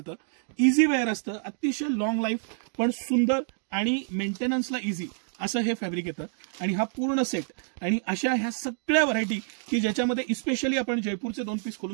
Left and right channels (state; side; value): silent; left; digital silence